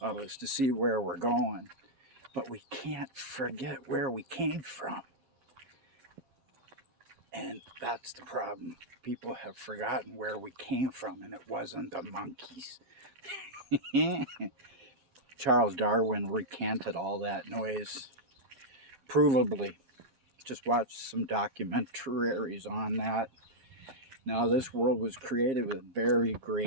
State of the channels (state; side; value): late; left; 12 ms